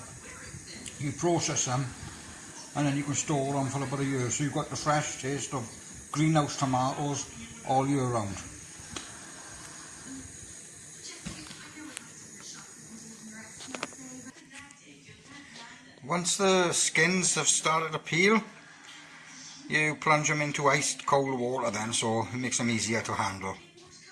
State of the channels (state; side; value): identical; both; correlation 1.00